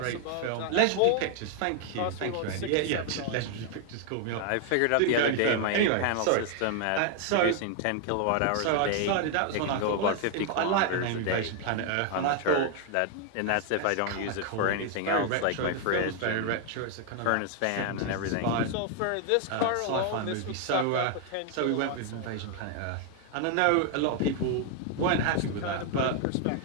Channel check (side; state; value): both; different; correlation 0.00